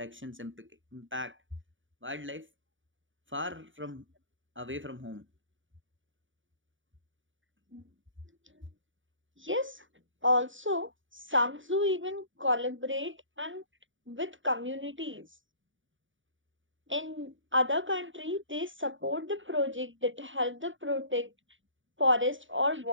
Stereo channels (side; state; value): left; late; 0.56 ms